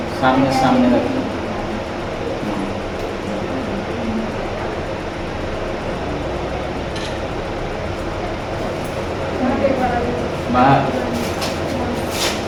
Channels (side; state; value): both; identical; correlation 1.00